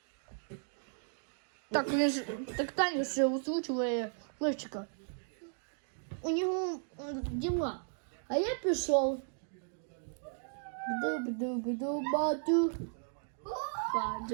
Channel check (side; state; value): left; silent; digital silence